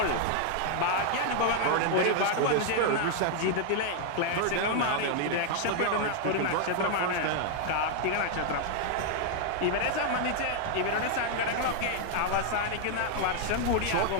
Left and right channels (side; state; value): both; different; correlation 0.00